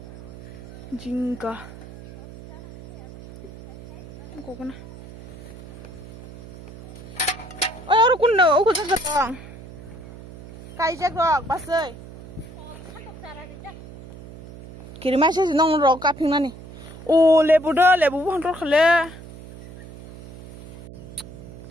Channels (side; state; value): right; noise; hum, 16 dB below the sound